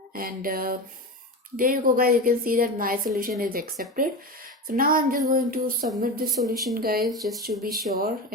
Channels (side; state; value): both; normal; correlation 0.24